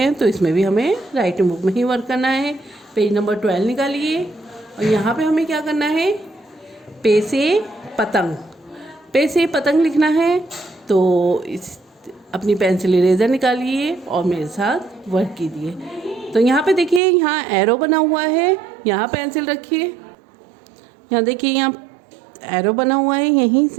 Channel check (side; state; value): left; drops out; at 17.0 s